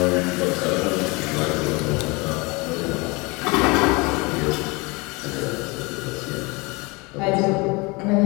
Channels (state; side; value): quieter; right; 26.4 dB